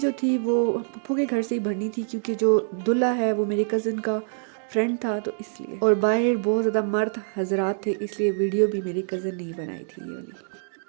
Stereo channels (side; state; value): left; silent; digital silence